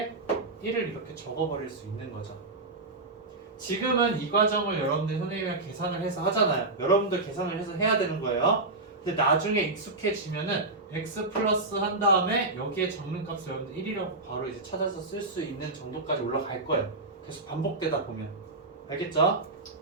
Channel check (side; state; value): left; quieter; 3.2 dB